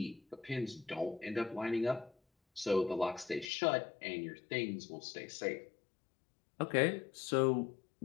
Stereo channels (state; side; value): drops out; right; at 3.5 s